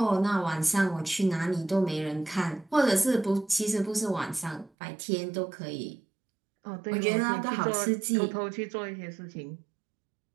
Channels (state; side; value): drops out; left; at 4.7 s